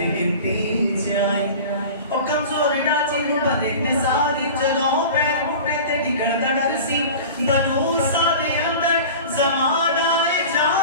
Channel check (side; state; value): both; inverted; correlation -0.37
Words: गिनती च आई। ओ कमजोर डाची नु बदे ने सारी जगहों पैर मुट्टे ते डिगड़ दा डर सी बनू सा दे अंदर ज़माना